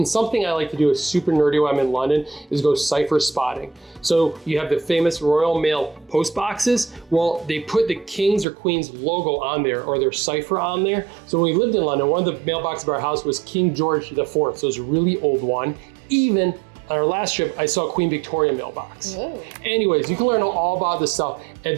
something I like to do is super nerdy when I'm in London is go cipher spotting. So you have the famous Royal Mail post boxes. Well, they put the King's or Queen's logo on there or their cipher on there. So when we lived in London, one of the mailboxes of our house was King George IV. So it was a really old one. Even on our last trip, I saw Queen Victoria mailbox. Whoa. Anyways, you can learn all about this stuff at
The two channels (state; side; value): drops out; left; at 8.5 s